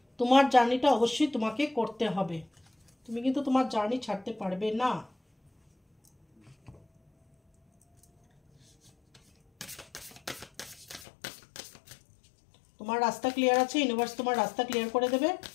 তোমার জার্নিটা অবশ্যই তোমাকে করতে হবে, তুমি কিন্তু তোমার জার্নি ছাড়তে পারবে না। তোমার রাস্তা ক্লিয়ার আছে, ইউনিভার্স তোমার রাস্তা ক্লিয়ার করে দেবে,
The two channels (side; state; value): right; drops out; at 11.1 s